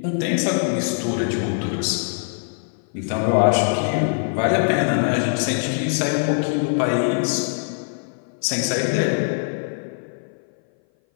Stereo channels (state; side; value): silent; right; 58 dB below the other